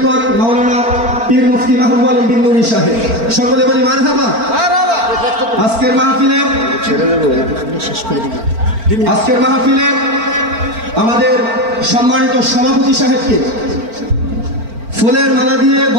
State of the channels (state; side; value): late; left; 4.4 ms